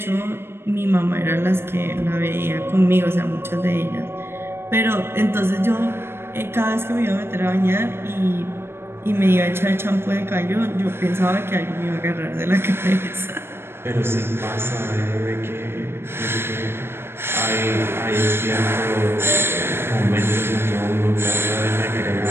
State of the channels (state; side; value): late; left; 0.12 ms